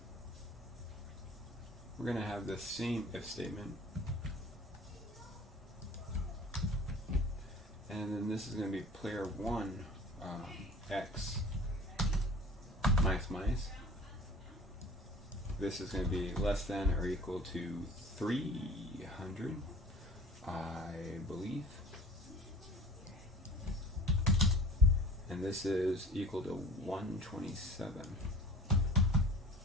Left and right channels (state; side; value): normal; both; correlation 0.44